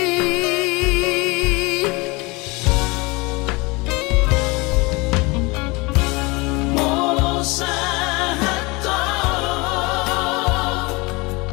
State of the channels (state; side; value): quieter; right; 25.5 dB